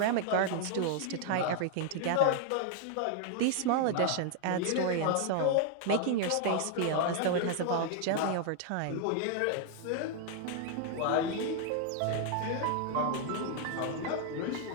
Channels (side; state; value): both; different; correlation 0.00